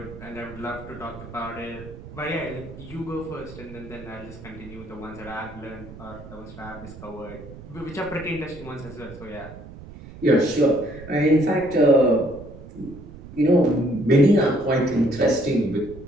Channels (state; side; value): noise; right; rumble, 16 dB below the sound